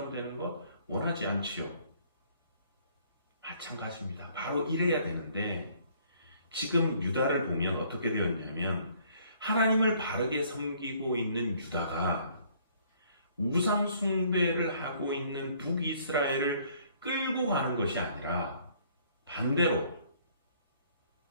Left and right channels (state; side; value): inverted; both; correlation -0.61